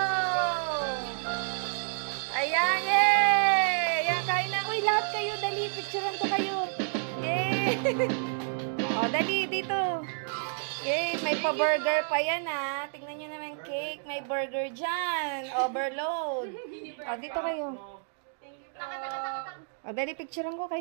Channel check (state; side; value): silent; left; digital silence